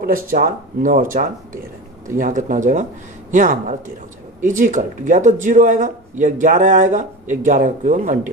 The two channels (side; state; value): both; normal; correlation 0.28